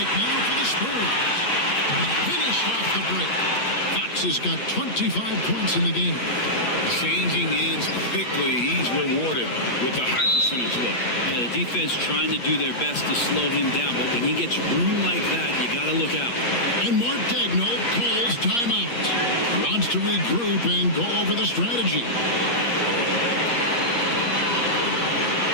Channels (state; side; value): late; right; 8.5 ms